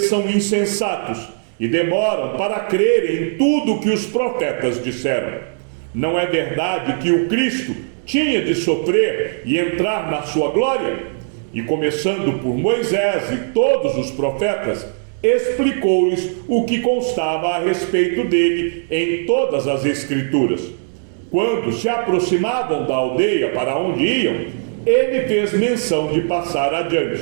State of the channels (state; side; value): silent; left; digital silence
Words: são insensatos e demoram para crer em tudo o que os profetas disseram. Não é verdade que o Cristo tinha de sofrer e entrar na sua glória? E começando por Moisés e todos os profetas, explicou-lhes o que constava a respeito dele em todas as Escrituras. Quando se aproximavam da aldeia para onde iam, ele fez menção de passar